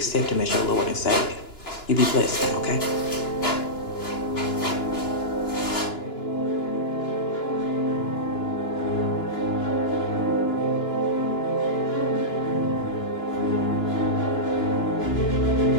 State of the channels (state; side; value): late; right; 2.9 ms